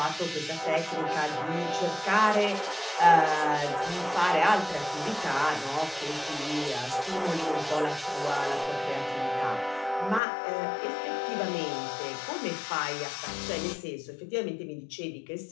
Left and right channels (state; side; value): drops out; right; at 10.2 s